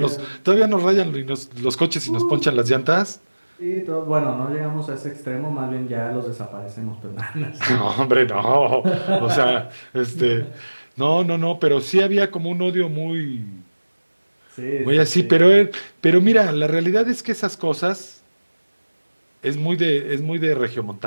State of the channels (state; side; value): inverted; both; correlation -1.00